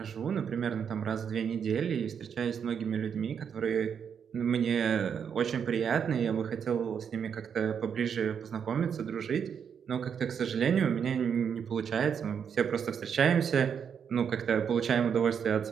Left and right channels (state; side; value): quieter; left; 7.4 dB